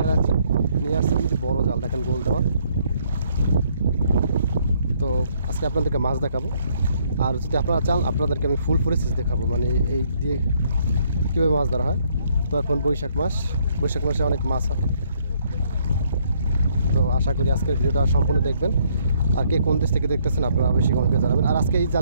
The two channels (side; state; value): both; inverted; correlation -0.68